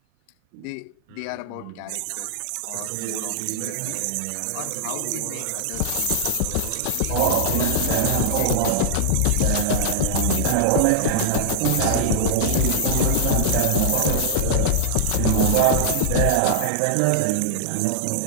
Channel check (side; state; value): both; different; correlation -0.01